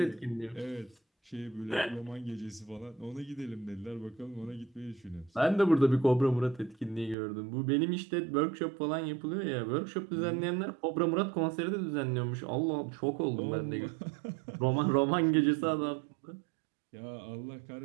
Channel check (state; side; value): drops out; left; at 7.2 s